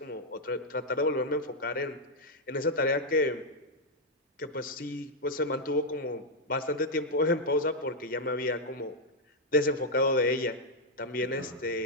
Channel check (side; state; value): both; normal; correlation -0.02